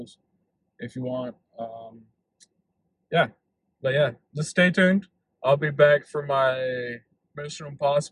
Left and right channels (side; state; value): both; identical; correlation 1.00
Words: if you want. Yeah, but yeah, just stay tuned. I'll be back for my Mission